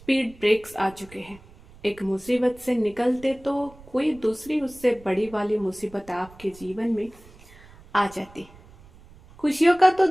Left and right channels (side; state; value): right; noise; rumble, 23 dB below the sound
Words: ब्रेक्स आ चुके हैं। एक मुसीबत से निकलते तो कोई दूसरी उससे बड़ी वाली मुसीबत आपके जीवन में आ जाती। खुशियों का तो